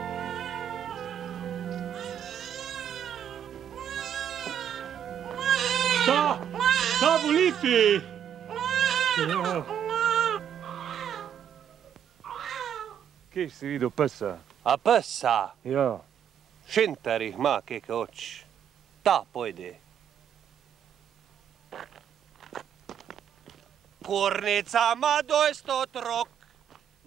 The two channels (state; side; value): quieter; left; 9.1 dB